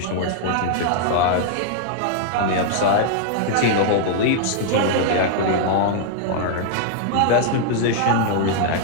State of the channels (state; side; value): different; both; correlation -0.01